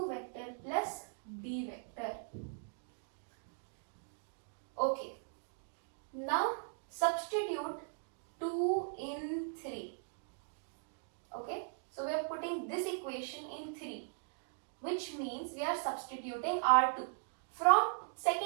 vector plus D vector. Okay. Now substitute 2 in 3. Okay. So we are putting this equation in 3, which means we are substituting R2. From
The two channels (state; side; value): silent; left; digital silence